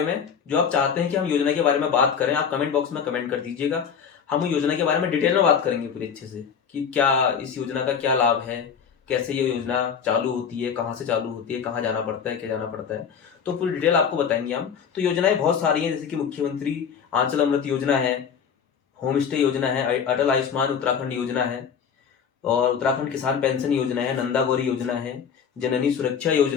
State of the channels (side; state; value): right; quieter; 7.1 dB